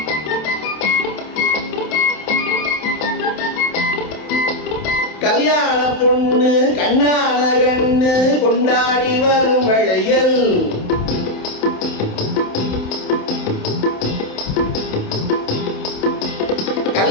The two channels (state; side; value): late; right; 27 ms